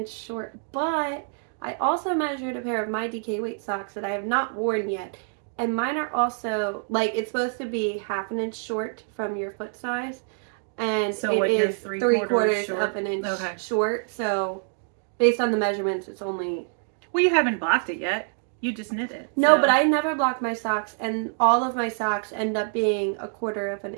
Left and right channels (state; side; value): silent; left; 61 dB below the other